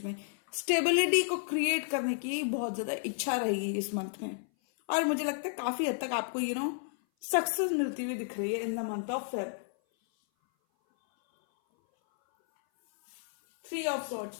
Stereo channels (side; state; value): right; silent; 57 dB below the other